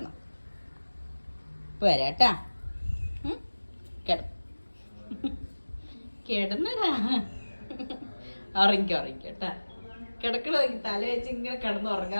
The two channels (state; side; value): inverted; both; correlation -1.00